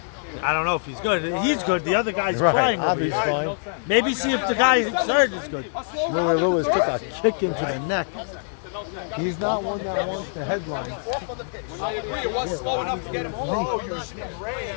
I don't know if he's good. He's good. The other guy's Right, flying. over Abu's here. fine. Maybe see if the guy third is good. Shmuel Lewis took a kick into the neck. He's not one that wants the headline.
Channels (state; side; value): silent; right; digital silence